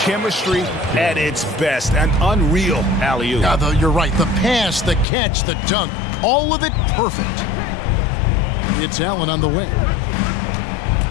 at its best. An unreal alley-oop. Yeah, you're right. The pass, the catch, the dunk. All of it perfect. It's Allen on the wing.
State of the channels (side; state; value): right; drops out; at 5.1 s